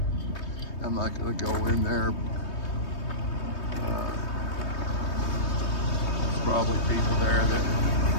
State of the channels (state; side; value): late; right; 3.2 ms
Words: I'm not going to go in there. There's probably people there that